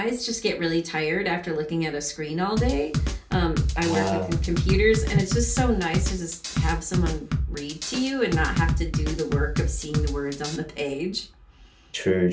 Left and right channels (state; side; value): identical; both; correlation 1.00